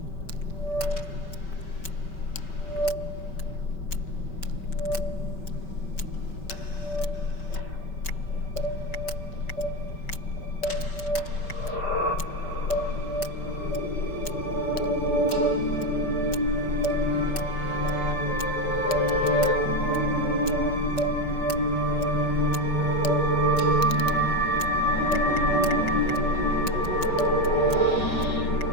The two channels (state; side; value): late; right; 5.2 ms